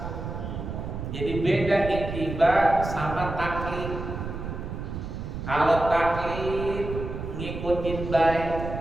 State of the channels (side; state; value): right; noise; rumble, 6 dB below the sound